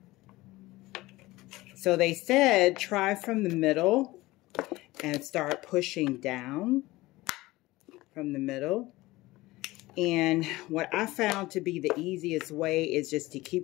So they said try from the middle and start pushing down from the middle. And what I found to be the easiest way is just to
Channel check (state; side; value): quieter; right; 19.3 dB